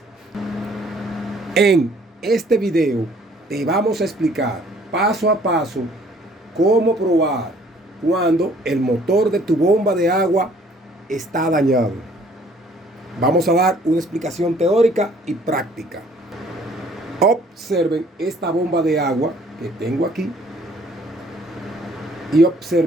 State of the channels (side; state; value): both; normal; correlation 0.58